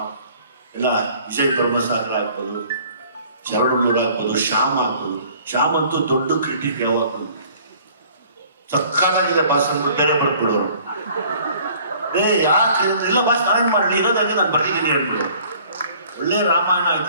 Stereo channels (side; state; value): both; inverted; correlation -0.54